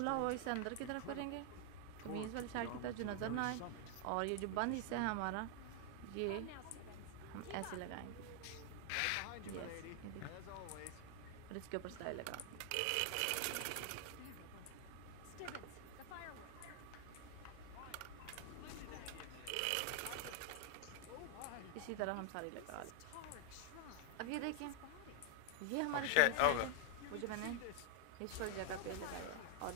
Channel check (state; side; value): different; both; correlation 0.00